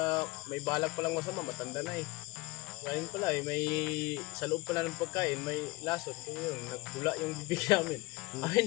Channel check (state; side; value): quieter; right; 22.8 dB